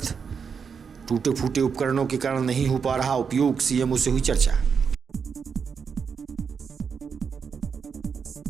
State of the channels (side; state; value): left; quieter; 6.2 dB